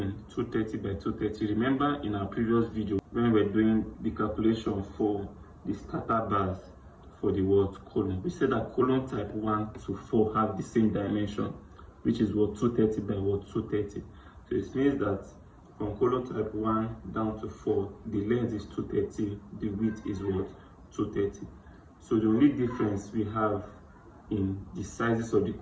230 by 230. Remember in our previous video when we were doing the calculation for the starter bars for the column, we said that column type 1 to 4 have the same dimension, which is 230 by 230. So it means that from column type 1 down to 4, the length is 230, the width is 230. So the only difference we have in the sizes of the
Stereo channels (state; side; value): identical; both; correlation 1.00